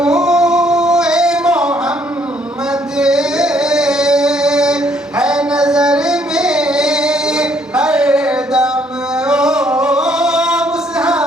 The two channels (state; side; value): normal; both; correlation 0.66